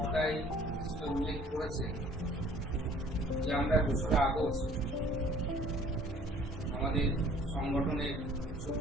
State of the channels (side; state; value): both; normal; correlation 0.54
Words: সেটা উল্লেখ করেছে যে আমরা 2রা আগস্ট আমাদের সংগঠনের